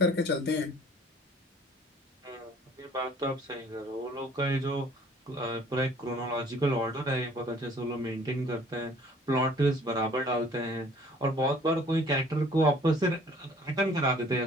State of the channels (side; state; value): both; normal; correlation 0.54